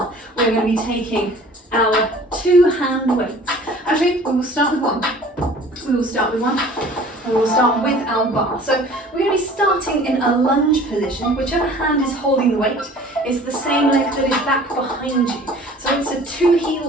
We're going to be taking our 2-hand weights. Actually, we will start with one. We will start with one. And we'll start with our bar. So we're going to be starting in a lunge position. Whichever hand is holding the weight is the same leg that is back behind you. So it's a 2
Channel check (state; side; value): normal; both; correlation 0.48